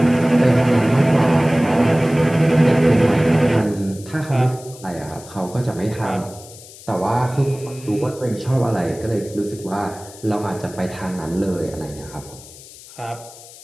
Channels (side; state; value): left; noise; hiss, 19 dB below the sound